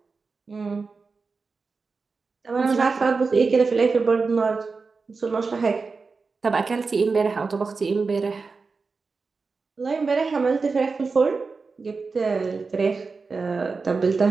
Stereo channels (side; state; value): left; quieter; 4.4 dB